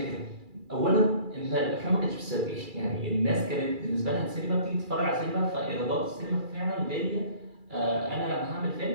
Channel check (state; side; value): late; left; 2.3 ms